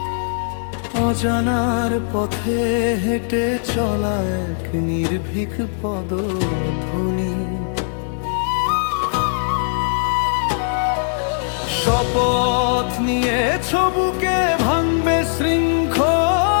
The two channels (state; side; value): silent; right; digital silence